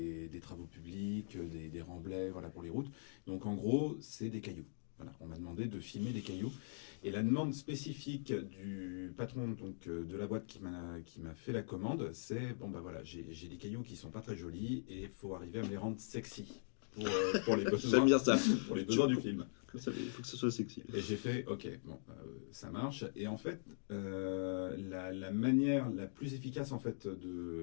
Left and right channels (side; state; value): right; silent; digital silence